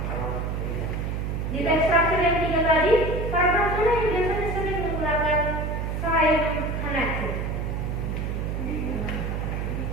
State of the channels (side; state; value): right; noise; hum, 2 dB below the sound